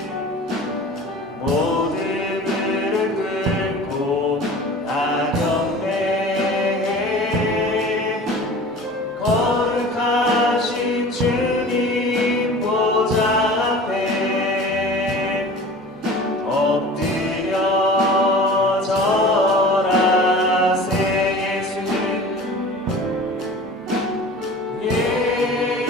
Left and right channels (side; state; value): both; normal; correlation 0.40